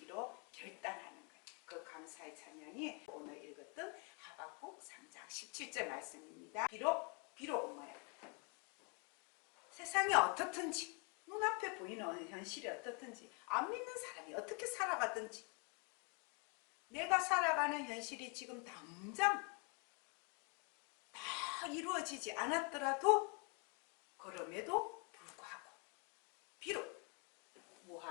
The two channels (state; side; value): quieter; right; 34.8 dB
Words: 결단하는 거예요. 그 감사의 찬양이 오늘 읽었던 하박국 3장 17절 말씀입니다. 비록 뭐예요? 세상이 어떻든지, 눈앞에 보이는 현실이 어떻든지, 안 믿는 사람이 어떻게 살아가든지, 내가 살아가는 현실이 지금 당장 다 이루어지지 않았더라도 그럼에도 불구하고 비록